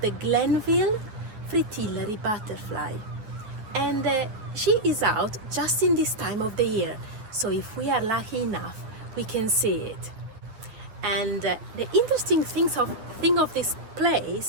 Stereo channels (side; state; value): left; late; 9.6 ms